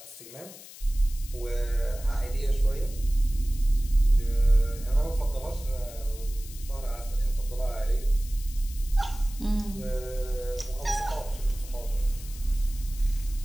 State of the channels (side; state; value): left; noise; hiss, 17 dB below the sound